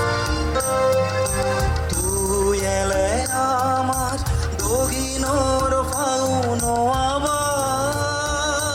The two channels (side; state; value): both; identical; correlation 1.00